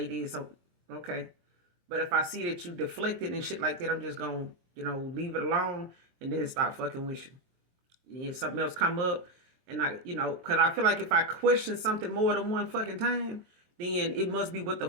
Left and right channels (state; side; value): late; left; 23 ms